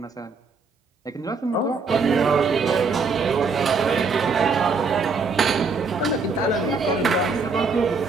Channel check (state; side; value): quieter; left; 4.4 dB